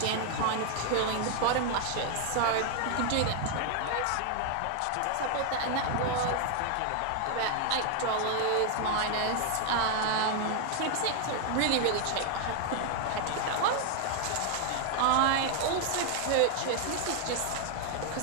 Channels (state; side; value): different; both; correlation 0.00